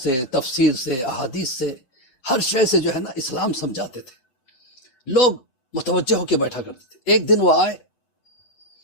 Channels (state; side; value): late; right; 7.8 ms